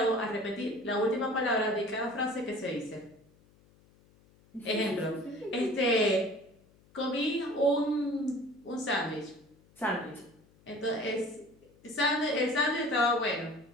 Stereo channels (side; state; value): left; noise; hum, 30 dB below the sound